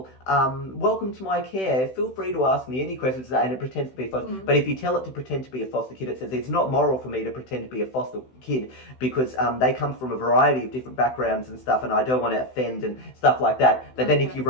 to my care. Feel free to ask me any questions. And it pretends to be a foster. But if you tell it to pretend to be a foster kid, it says, it's not moral for me to pretend to be a foster kid because they come from a variety of different backgrounds and stuff, and I don't want to offend and stuff like that. But then if you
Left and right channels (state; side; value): late; right; 16 ms